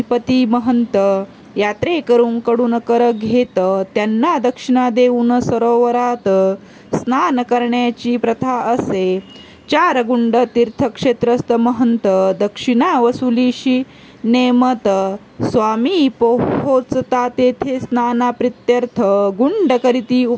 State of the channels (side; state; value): both; identical; correlation 1.00